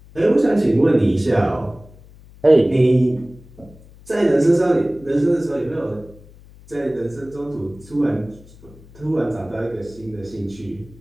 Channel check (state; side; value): noise; left; hum, 23 dB below the sound